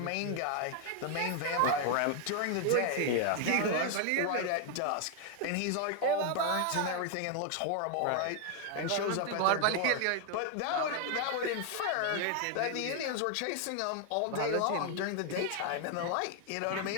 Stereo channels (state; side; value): different; both; correlation 0.00